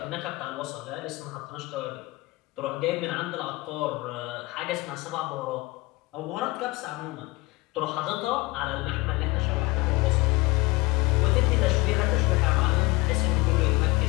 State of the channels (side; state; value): right; quieter; 22.5 dB